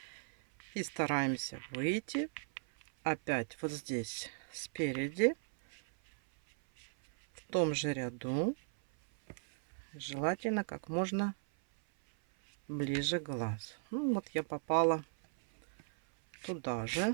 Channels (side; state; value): left; silent; 53 dB below the other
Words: и стараемся выйти опять вот здесь спереди в том же ряду, желательно как можно ближе к глазу. Ну вот я попала туда